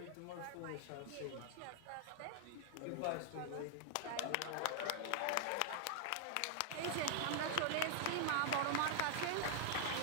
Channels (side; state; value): both; different; correlation 0.00